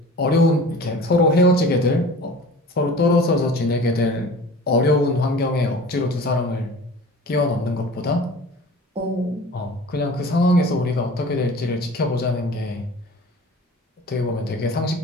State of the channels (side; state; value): both; normal; correlation 0.41